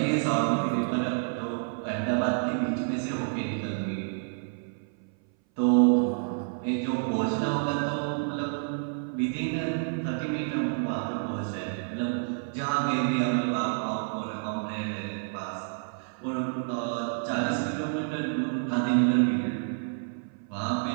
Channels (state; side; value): silent; left; 58 dB below the other